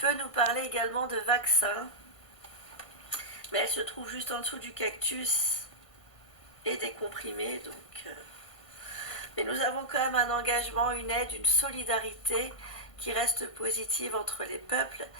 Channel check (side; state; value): right; late; 1.5 ms